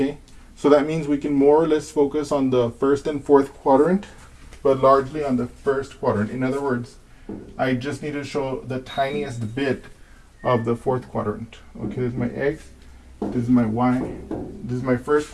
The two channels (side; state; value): both; identical; correlation 1.00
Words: so that means we can more or less focus on the first and fourth quadrant, but largely on the first quadrant. In other words, I just need to show the tiniest bit of the fourth quadrant. Okay, this is my x, this is my y, this is my first